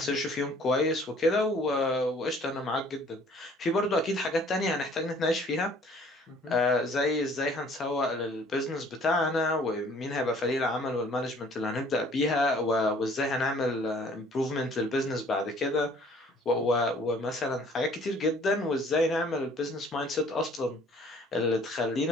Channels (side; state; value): both; normal; correlation 0.55